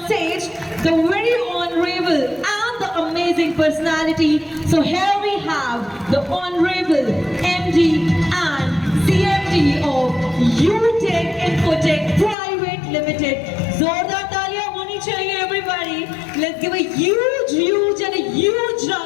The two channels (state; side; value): drops out; right; at 12.4 s